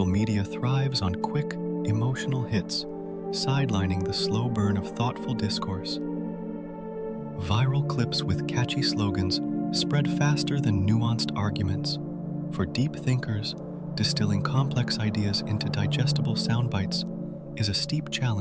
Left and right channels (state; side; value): identical; both; correlation 1.00